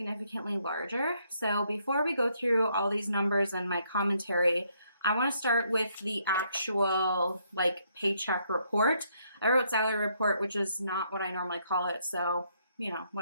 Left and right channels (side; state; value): both; inverted; correlation -0.72